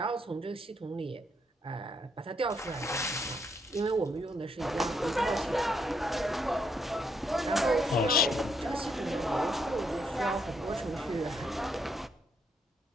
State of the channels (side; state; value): both; normal; correlation 0.75